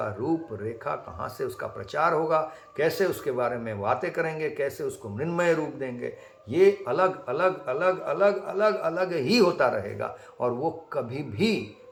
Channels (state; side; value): identical; both; correlation 1.00